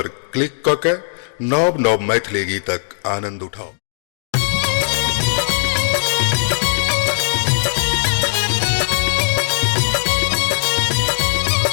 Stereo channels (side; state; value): right; silent; digital silence